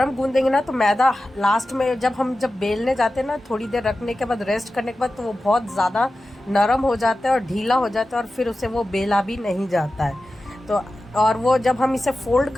गूंदेंगे ना तो मैदा लास्ट में जब बेलने जाते हैं ना, थोड़ी देर रखने के बाद, रेस्ट करने के बाद, तो वो बहुत ज़्यादा नरम हो जाता है और ढीला हो जाता है, और फिर उसे वो बेला भी नहीं जाता है। तो और वो जब हम इसे फोल्ड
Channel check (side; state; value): both; normal; correlation 0.94